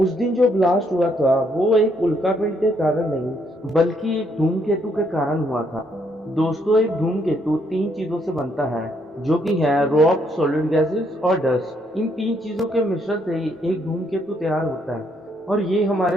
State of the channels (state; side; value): normal; both; correlation 0.72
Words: उस दिन जो ब्लास्ट हुआ था वो एक उल्कापिंड के कारण नहीं बल्कि एक धूमकेतु के कारण हुआ था। दोस्तों एक धूमकेतु तीन चीजों से बनता है जो कि है रॉक, सॉलिड गैसेस और डस्ट। इन तीन चीजों के मिश्रण से ही एक धूमकेतु तैयार होता है और ये